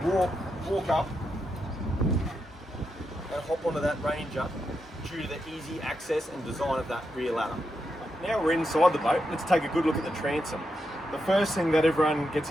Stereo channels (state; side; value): normal; both; correlation 0.85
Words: walk up and hop onto that Ranger due to the easy access and design of that rear ladder. Now we're inside the boat, let's take a good look at the transom. The first thing that everyone gets